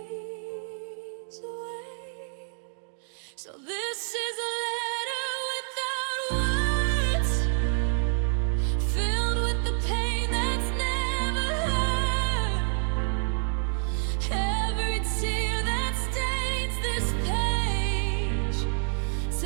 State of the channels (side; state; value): left; silent; digital silence